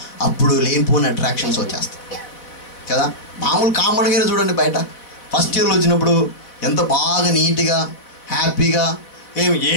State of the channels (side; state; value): right; late; 4.0 ms